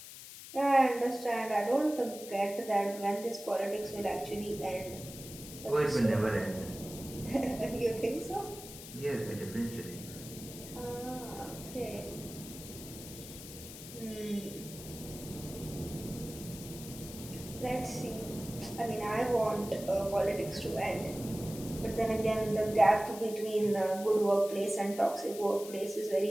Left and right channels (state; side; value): noise; left; hiss, 13 dB below the sound